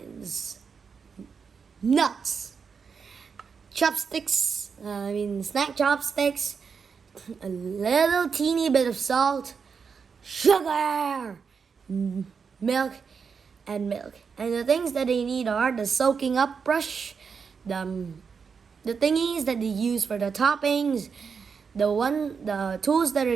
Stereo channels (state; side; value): quieter; left; 5.9 dB